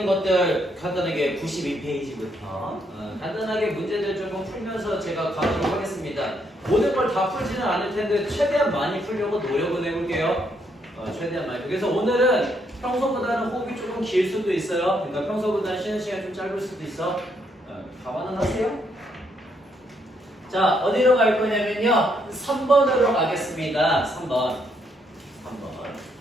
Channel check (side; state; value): both; normal; correlation 0.74